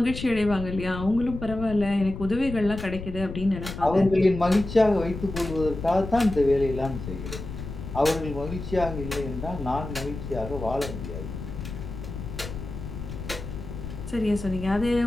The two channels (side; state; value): left; noise; rumble, 9 dB below the sound